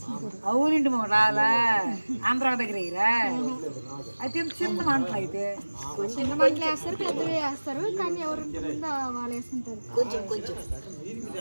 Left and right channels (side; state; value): both; inverted; correlation -1.00